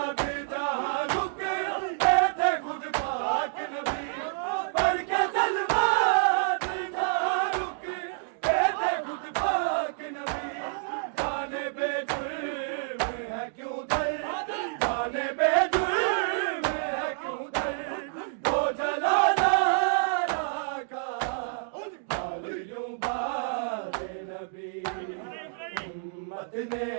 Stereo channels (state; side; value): silent; left; digital silence